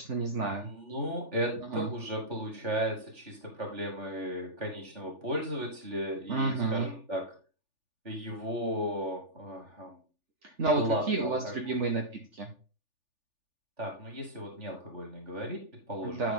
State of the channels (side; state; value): left; late; 3.4 ms